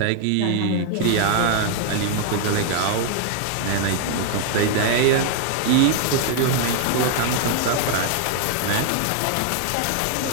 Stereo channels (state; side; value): different; both; correlation 0.00